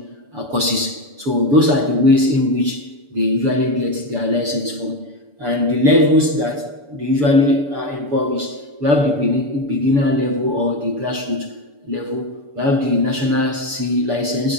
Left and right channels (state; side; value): late; left; 7.0 ms